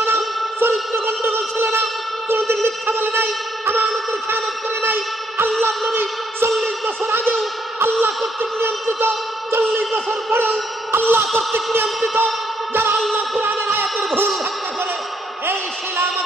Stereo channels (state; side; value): normal; both; correlation 0.73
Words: না, চরিত্র গন্ডগোল ছিল না, কোনদিন মিথ্যা বলে নাই, আমানতের খেয়ানত করে নাই। আল্লাহর নবী 40 বছর আগেও আল্লাহ কর্তৃক নিয়ন্ত্রিত, 40 বছর পরেও আল্লাহ কর্তৃক নিয়ন্ত্রিত। যারা আল্লাহ কোরআনের আয়াতের ভুল ব্যাখ্যা করে, এই শিলা